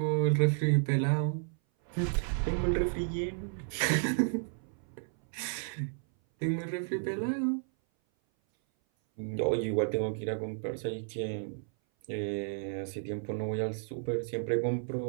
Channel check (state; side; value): silent; left; 56 dB below the other